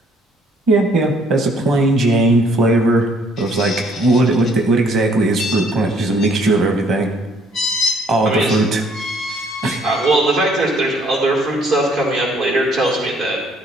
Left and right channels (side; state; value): both; normal; correlation 0.64